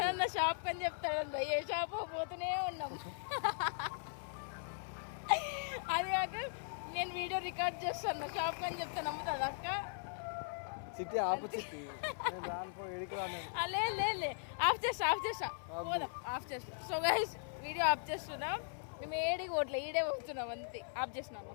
షాప్ అని చెప్తాడు. ఏ షాప్ పోతూనే ఉన్నాం. అది కాక నేను వీడియో రికార్డ్ చేస్తాను షాప్ అని చెప్తే నమ్ముతుంది అక్క. చిట్టి ఆపు చిట్టి. లే ఆఫ్ చేస్తా పోదాం. ఆఫ్ చేస్తా. సో గైస్ వీడియో ఆఫ్ చేస్తున్నాం. మేము ఏడికి ఓట్లే ఈడే పోతున్నాం అంతే. ఆఫ్ చేసినా అన్న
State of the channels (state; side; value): silent; right; 52 dB below the other